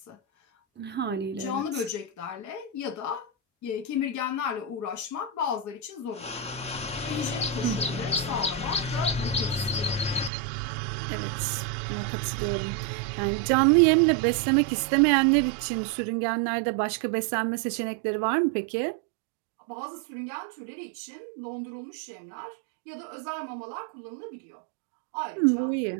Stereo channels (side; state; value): left; drops out; at 10.3 s